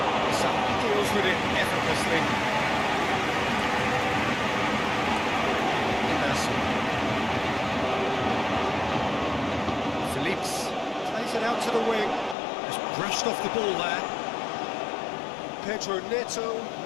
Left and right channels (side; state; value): right; drops out; at 12.4 s